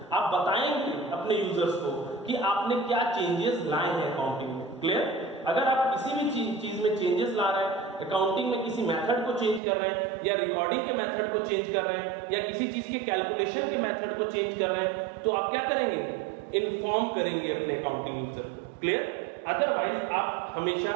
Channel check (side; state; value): left; drops out; at 9.6 s